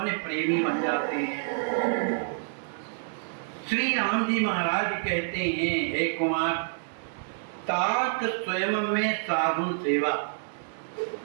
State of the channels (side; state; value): left; silent; 59 dB below the other